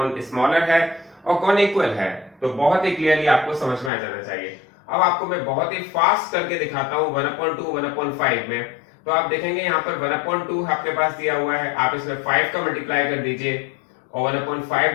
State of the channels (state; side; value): drops out; right; at 3.9 s